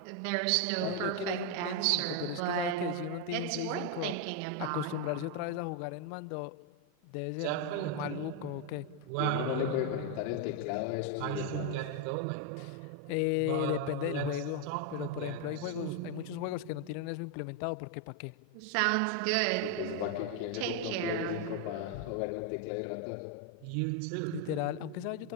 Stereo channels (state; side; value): different; both; correlation 0.01